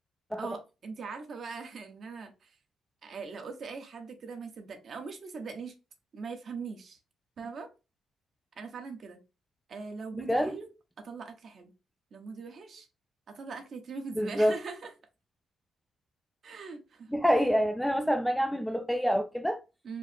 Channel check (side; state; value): both; normal; correlation 0.95